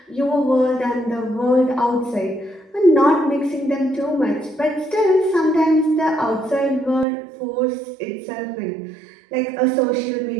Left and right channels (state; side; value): drops out; left; at 7.1 s